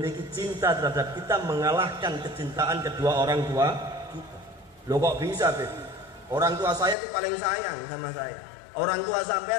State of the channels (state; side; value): drops out; right; at 7.0 s